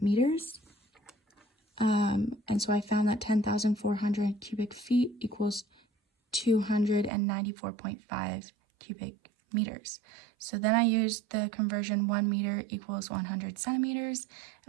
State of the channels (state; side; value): drops out; left; at 7.1 s